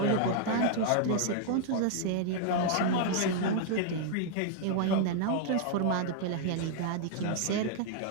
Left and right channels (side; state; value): both; different; correlation -0.01